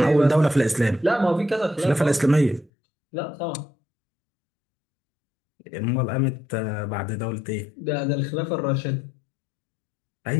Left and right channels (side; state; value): right; drops out; at 2.7 s